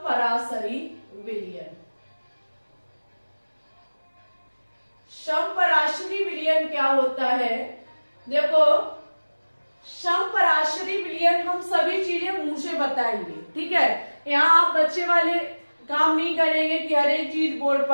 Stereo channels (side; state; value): both; inverted; correlation -1.00